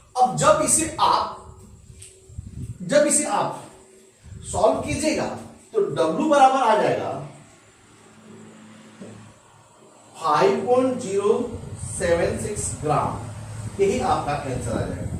अब जब इसे आप सॉल्व कीजिएगा तो W बराबर आ जाएगा 5.076 ग्राम, यही आपका आंसर आ जाएगा।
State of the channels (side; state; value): both; identical; correlation 1.00